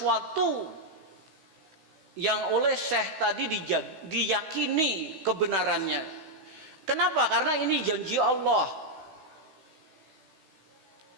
yang oleh Syekh tadi diyakini kebenarannya. Kenapa? Karena ini janji Allah.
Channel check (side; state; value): left; late; 16 ms